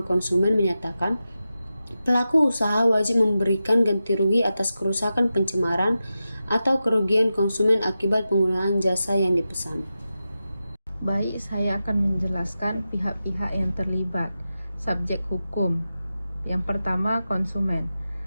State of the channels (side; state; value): both; inverted; correlation -0.92